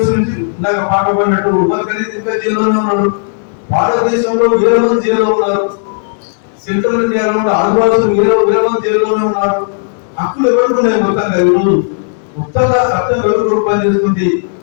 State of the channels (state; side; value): silent; right; digital silence